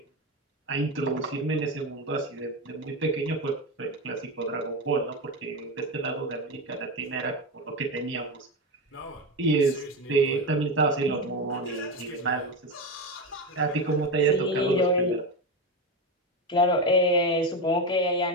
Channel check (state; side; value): normal; both; correlation 0.16